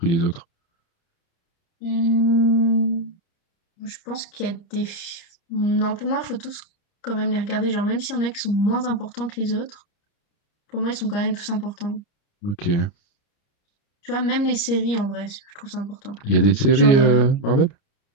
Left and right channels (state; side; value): late; right; 30 ms